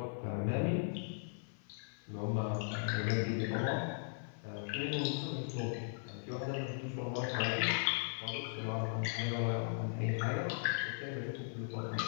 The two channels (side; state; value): right; silent; 52 dB below the other